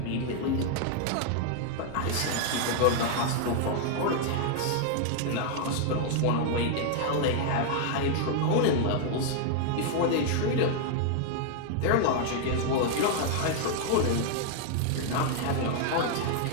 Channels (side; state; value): both; different; correlation 0.00